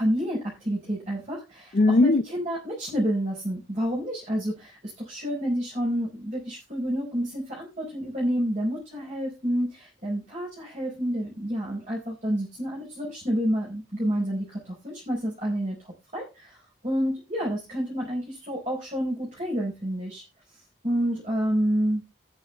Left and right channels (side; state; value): both; normal; correlation 0.82